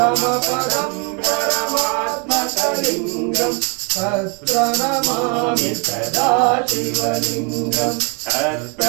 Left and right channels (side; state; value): left; quieter; 35.0 dB